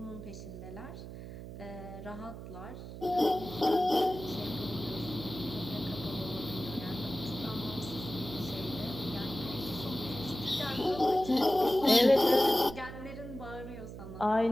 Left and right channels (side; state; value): right; noise; hum, 11 dB below the sound